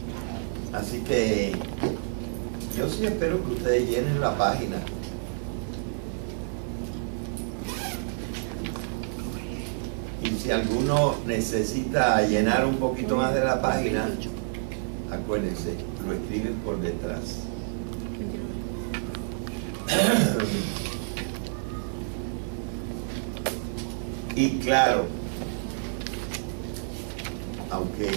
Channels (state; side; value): silent; left; digital silence